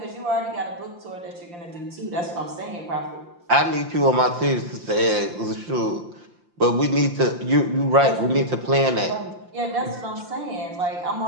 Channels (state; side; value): late; left; 5.7 ms